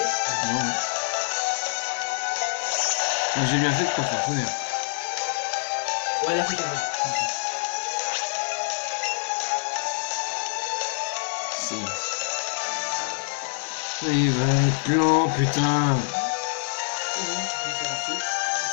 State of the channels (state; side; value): silent; right; digital silence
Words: Non. Moi, j'ai bien fait de pas faire tonnerre. Ouais, la flic, elle Si. Il va être lent, putain.